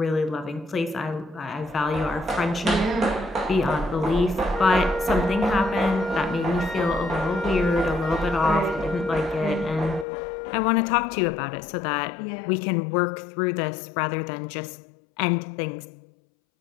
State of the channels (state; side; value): drops out; right; at 10.1 s